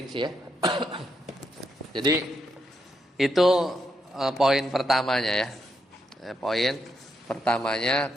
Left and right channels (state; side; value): normal; both; correlation 0.81